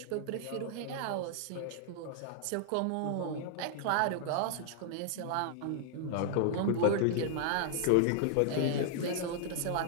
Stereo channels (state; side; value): different; both; correlation -0.01